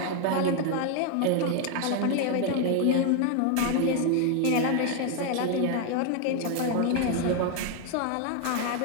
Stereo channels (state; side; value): different; both; correlation 0.01